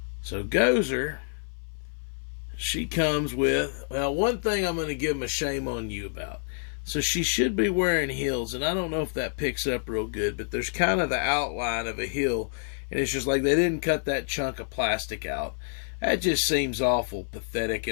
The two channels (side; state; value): right; silent; 57 dB below the other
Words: So Gozer, she comes with, well, one thing I'm going to give him a shame on you about. So she should be wearing heels, and I don't know if that picks up real good, but there's kind of the outline of a heel, and it's just like they didn't cut that chunk of plastic out. That just seems awful pathetic